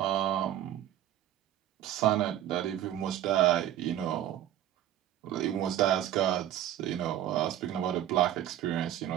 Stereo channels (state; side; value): quieter; left; 11.9 dB